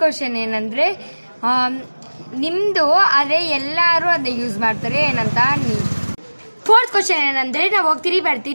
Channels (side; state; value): both; inverted; correlation -1.00